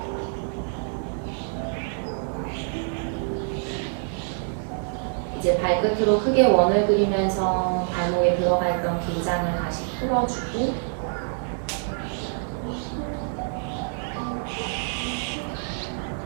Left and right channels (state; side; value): silent; left; 61 dB below the other